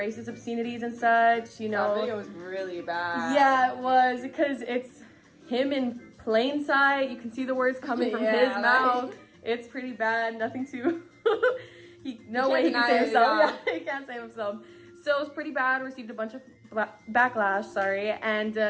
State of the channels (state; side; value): identical; both; correlation 1.00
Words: obscenities and such, That video was really bad. Yeah, it was, because it's him in plain sight. You can see the words coming from his mouth. It's pretty bad. Nothing to... no way he can save himself. Yeah, he can't save himself. So it was pretty bad, received a bunch of backlash, and,